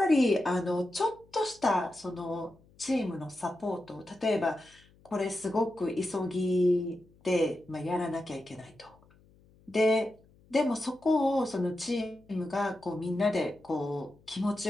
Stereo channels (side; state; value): left; noise; hum, 29 dB below the sound